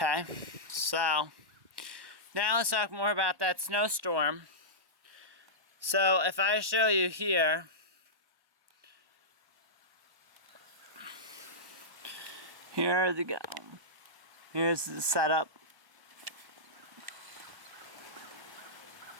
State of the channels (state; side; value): late; left; 1.1 ms